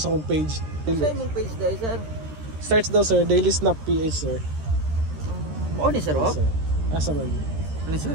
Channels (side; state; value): left; late; 13 ms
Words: akong page. Sa imong page dai sir? Search daw sir, Daily Snap PH sir. Oo ni sir, oh? Asa man? Ano sir?